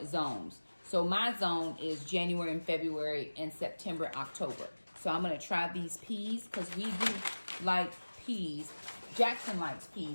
zones. So So my zone is January and February and September, October. So I'm going to try these peas because we do like peas. Jackson likes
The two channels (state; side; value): inverted; both; correlation -1.00